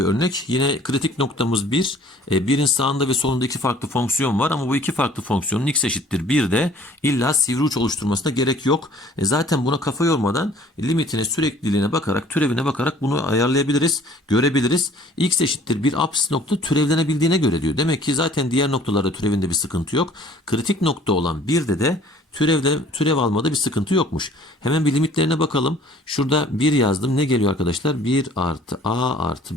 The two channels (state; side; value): normal; both; correlation 0.54